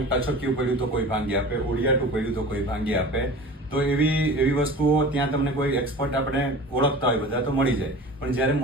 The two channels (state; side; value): normal; both; correlation 0.38